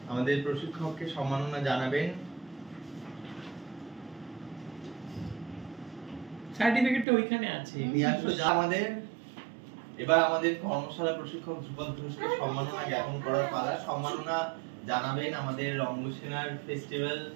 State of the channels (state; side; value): drops out; left; at 7.1 s